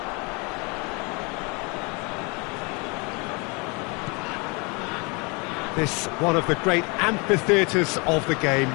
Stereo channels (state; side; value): quieter; right; 30.2 dB